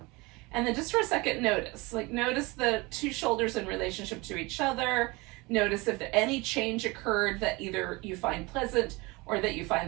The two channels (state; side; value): quieter; left; 24.4 dB